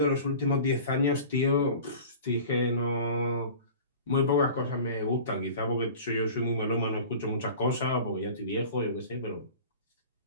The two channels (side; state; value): both; inverted; correlation -0.40